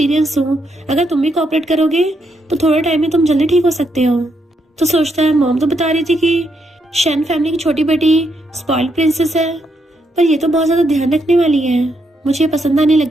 हूँ, अगर तुम भी कोऑपरेट करोगे तो थोड़े टाइम में तुम जल्दी ठीक हो सकते हो। तो सोचता है मॉम तो बता रही थी कि शन फैमिली की छोटी बेटी स्पॉइल्ड प्रिंसेस है, पर ये तो बहुत ज्यादा ध्यान रखने वाली है, मुझे पसंद आने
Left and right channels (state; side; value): normal; both; correlation 0.78